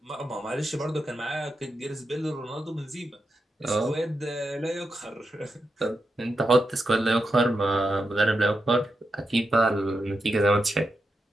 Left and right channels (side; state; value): both; normal; correlation 0.87